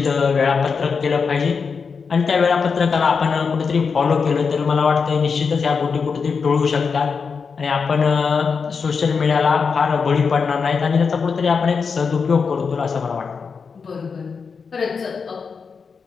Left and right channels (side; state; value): right; quieter; 5.5 dB